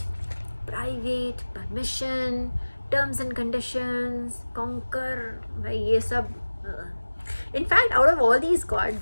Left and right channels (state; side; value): inverted; both; correlation -1.00